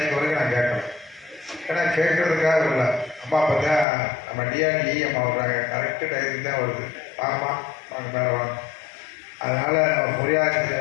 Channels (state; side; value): drops out; right; at 3.9 s